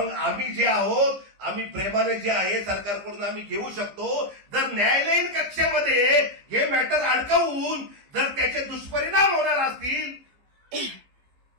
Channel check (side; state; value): left; late; 15 ms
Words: आम्ही जे आहोत, आम्ही प्रेमाने जे आहे सरकारकडून आम्ही घेऊ शकतो. जर न्यायालयीन कक्षेमध्ये हे मॅटर अडकवून जर त्याचे दुष्परिणाम होणार असतील